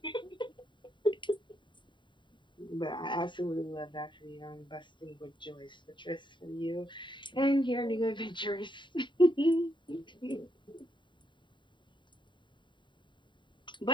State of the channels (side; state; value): right; late; 0.23 ms